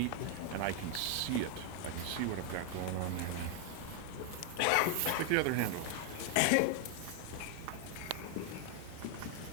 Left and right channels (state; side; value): different; both; correlation 0.01